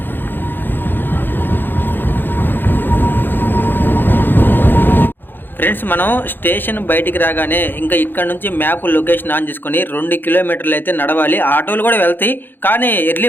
ఫ్రెండ్స్, మనం స్టేషన్ బయటికి రాగానే ఇంకా ఇక్కడ నుంచి మ్యాప్ లొకేషన్ ఆన్ చేసుకొని 2 కిలోమీటర్లు అయితే నడవాలి. ఆటోలు కూడా వెళ్తాయి, కానీ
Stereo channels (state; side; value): late; right; 0.096 ms